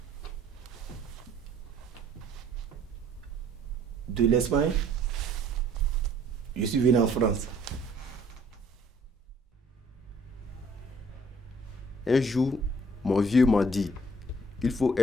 De l'Espagne, je suis venu en France. Un jour, mon vieux m'a dit, il faut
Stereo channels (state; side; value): normal; both; correlation 0.58